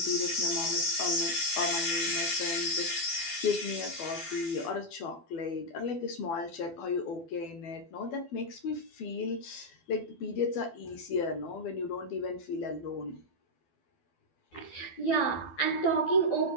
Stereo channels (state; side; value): late; right; 12 ms